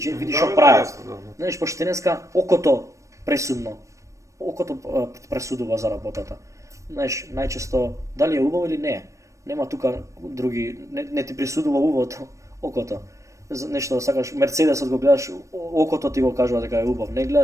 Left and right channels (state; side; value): late; left; 0.15 ms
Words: види што прави. Знаеш, пошто денеска окото пресудно. Окото пресудува за работата. Знаеш, најчесто дали е убаво или не е. Нема тука други, не ти присудува убавото, окото. Нешто да сакаш, Мерцедесот го гледаш, окото ти го кажува дека е убав. Не